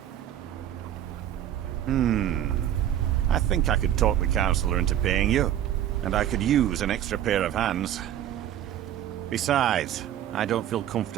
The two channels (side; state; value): left; quieter; 11.2 dB